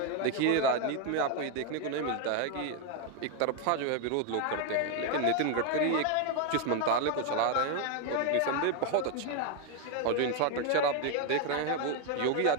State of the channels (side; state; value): both; different; correlation 0.01